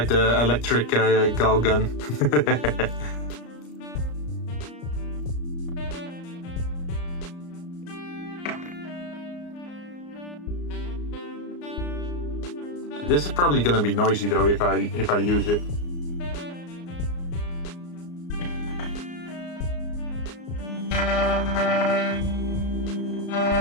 the electric gal gun? This is probably gonna be noisy though if I use it.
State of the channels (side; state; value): right; late; 34 ms